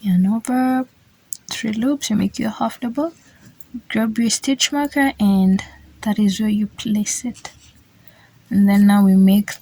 Yarn over 3 loops, you make your half double, grab your stitch marker, and that is where you place it. And then now we make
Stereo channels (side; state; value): both; identical; correlation 1.00